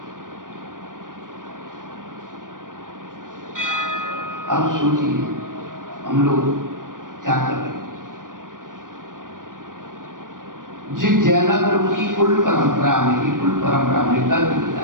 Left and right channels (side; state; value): left; late; 0.89 ms